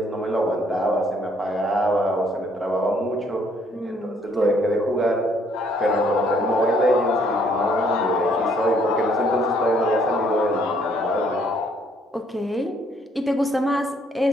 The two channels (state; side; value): normal; both; correlation 0.66